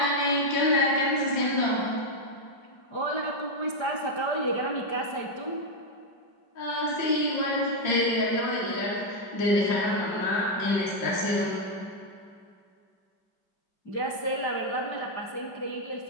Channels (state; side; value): late; right; 5.1 ms